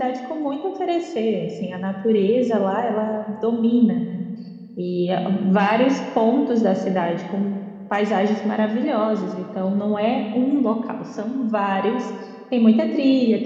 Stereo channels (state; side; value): identical; both; correlation 1.00